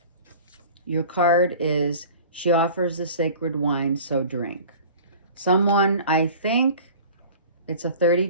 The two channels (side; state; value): both; inverted; correlation -0.42